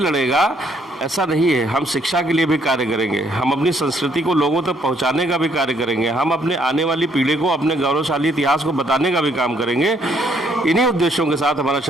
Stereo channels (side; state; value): both; normal; correlation 0.68